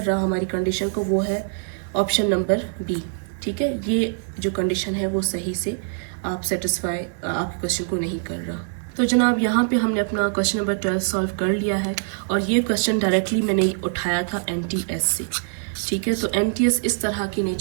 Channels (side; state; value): left; silent; 63 dB below the other